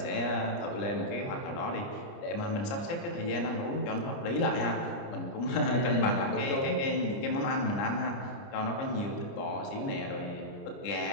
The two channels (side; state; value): right; late; 29 ms